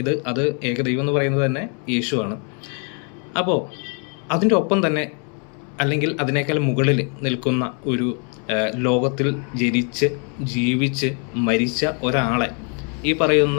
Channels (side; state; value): right; quieter; 38.9 dB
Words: അത് ഏകദൈവം എന്ന് പറയുന്നത് തന്നെ യേശുവാണ്. അപ്പോൾ അതിൻ്റെ ഒപ്പം തന്നെ അല്ലെങ്കിൽ അതിനേക്കാൾ മുകളിൽ നിൽക്കുന്ന ഒരു ലോകത്തിൽ ജനിച്ച് ജീവിച്ച് മരിച്ച ഒരാളെ ഈ